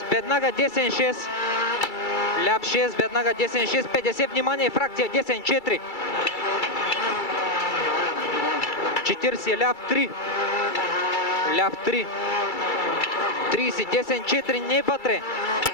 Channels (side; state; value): right; late; 2.3 ms